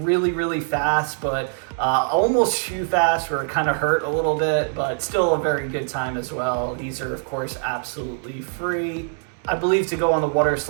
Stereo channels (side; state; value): left; silent; 64 dB below the other